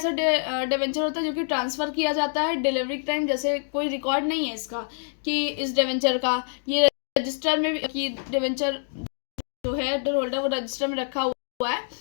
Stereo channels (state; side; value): silent; right; 61 dB below the other